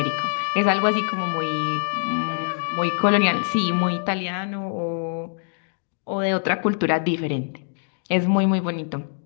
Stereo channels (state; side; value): silent; right; digital silence